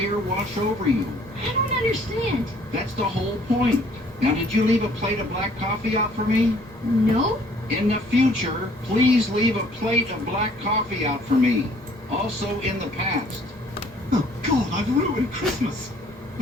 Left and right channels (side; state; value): both; normal; correlation 0.58